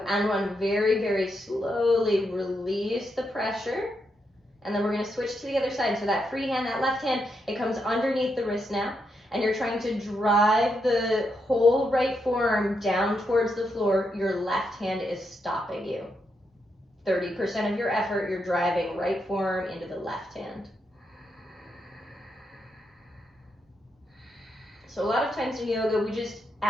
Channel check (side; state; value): both; normal; correlation 0.82